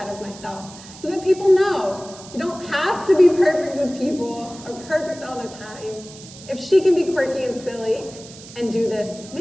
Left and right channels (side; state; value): right; noise; hiss, 18 dB below the sound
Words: of myself so that people know you don't have to be perfect with people or perfect all the time. If she can be quirky and silly and do this,